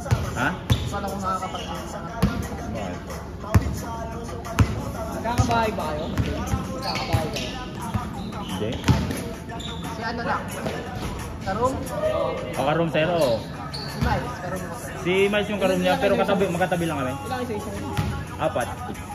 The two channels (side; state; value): both; identical; correlation 1.00